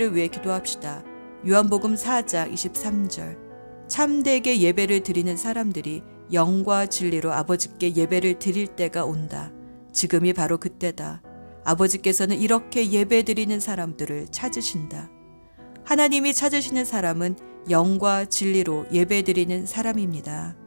위해 기도합시다. 요한복음 4장 23절. 참되게 예배를 드리는 사람들이 영과 진리로 아버지께 예배를 드릴 때가 온다. 지금이 바로 그때다. 아버지께서는 이렇게 예배 드리는 사람들을 찾으신다. 하나님이 찾으시는 사람은 영과 진리로 예배 드리는 사람입니다.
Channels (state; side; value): inverted; both; correlation -1.00